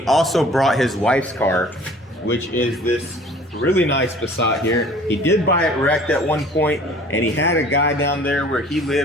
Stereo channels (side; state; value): both; normal; correlation 0.50